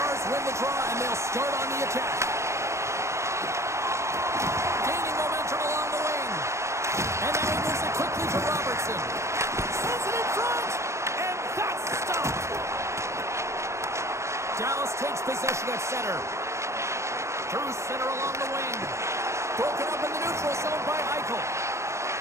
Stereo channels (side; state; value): left; late; 0.14 ms